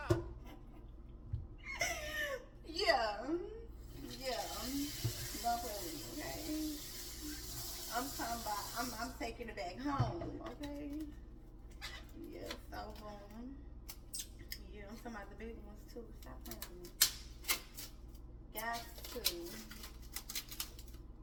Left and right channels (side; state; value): both; identical; correlation 1.00